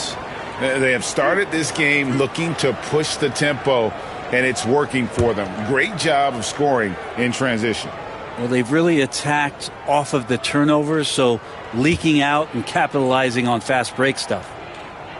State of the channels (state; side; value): identical; both; correlation 1.00